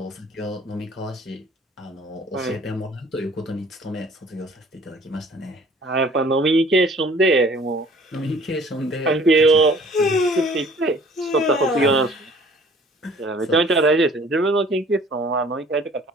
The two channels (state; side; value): normal; both; correlation 0.53